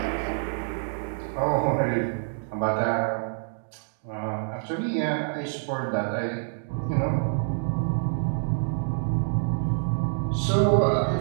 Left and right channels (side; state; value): left; silent; digital silence